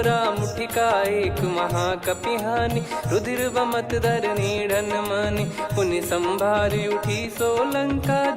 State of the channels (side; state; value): both; identical; correlation 1.00